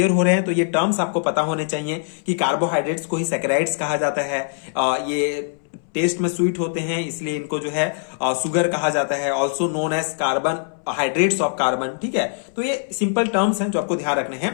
हो रहे हैं तो ये टर्म्स आपको पता होने चाहिए कि कार्बोहाइड्रेट्स को ही सैकेराइड्स कहा जाता है। ये टेस्ट में स्वीट होते हैं, इसलिए इनको जो है सुगर कहा जाता है। Also known as carbon, hydrates of carbon. ठीक है, तो ये सिंपल टर्म्स हैं जो आपको ध्यान रखने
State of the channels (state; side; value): silent; right; 62 dB below the other